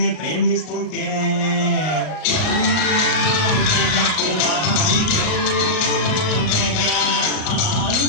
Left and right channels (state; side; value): late; right; 38 ms